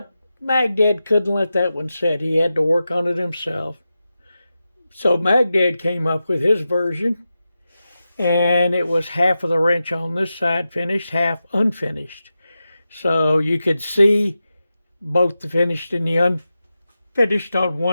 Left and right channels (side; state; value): both; inverted; correlation -0.91